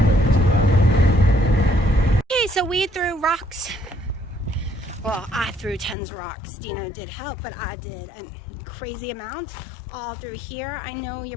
So we threw rocks. Well, I threw tons of rocks. Dina did help, but I did a crazy amount all through here. I know you're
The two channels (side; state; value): right; drops out; at 6.0 s